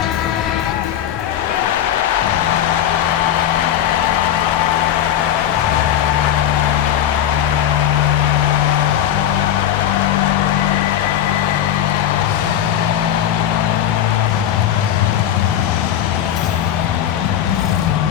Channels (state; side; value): quieter; right; 10.7 dB